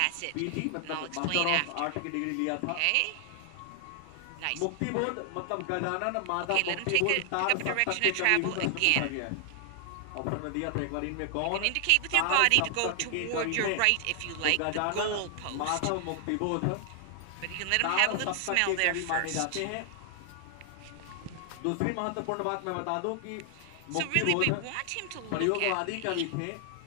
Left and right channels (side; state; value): both; different; correlation 0.00